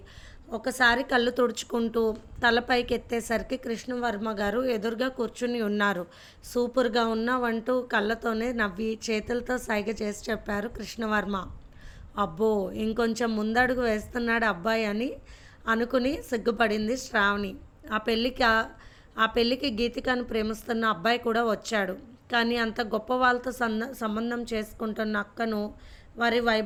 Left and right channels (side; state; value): both; identical; correlation 1.00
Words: ఒకసారి కళ్ళు తుడుచుకుంటూ తలపైకి ఎత్తేసరికి కృష్ణవర్మ గారు ఎదురుగా కూర్చుని ఉన్నారు. సూపర్గా ఉన్నావంటూ కళ్ళతోనే నవ్వి చేతులతో సైగ చేసి చెప్పారు కృష్ణవర్మ. అబ్బో, ఇంకొంచెం ముందడుగు వేస్తున్నాడు అబ్బాయి అని అనుకుని సిగ్గుపడింది శ్రావణి. ఆ పెళ్ళికి గీతికను ప్రేమిస్తున్న అబ్బాయి కూడా వచ్చాడు. కానీ అంత గొప్ప వాళ్ళతో సంబంధం చేసుకుంటున్న అక్కను, వారి